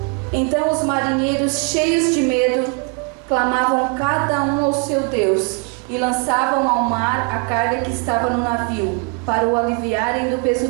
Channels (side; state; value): left; quieter; 33.0 dB